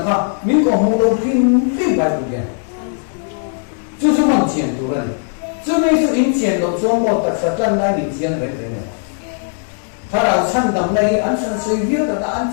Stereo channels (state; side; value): silent; right; 64 dB below the other